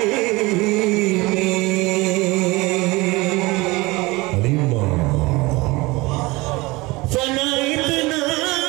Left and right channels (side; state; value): left; quieter; 22.8 dB